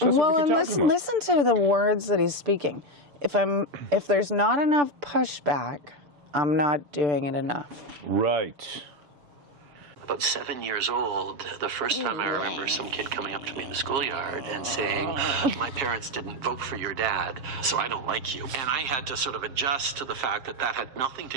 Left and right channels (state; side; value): late; left; 7.4 ms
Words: well, what and listen to the words that he's speaking. If there's not enough pushback, I'm not doing it enough. Right. About 7 years old, the first time I remember some kid coming up to me in the schoolyard and saying, my parents didn't vote for your dad, so I don't like you. And I had to sort of adjust to the fact that that had nothing